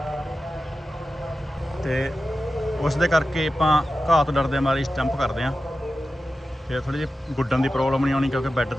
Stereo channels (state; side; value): normal; both; correlation 0.93